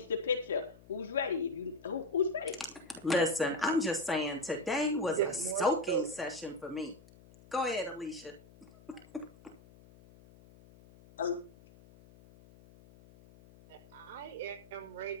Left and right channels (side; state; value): left; noise; hum, 23 dB below the sound